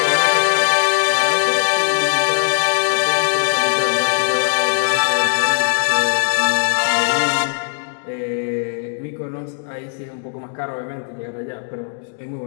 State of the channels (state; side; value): silent; right; digital silence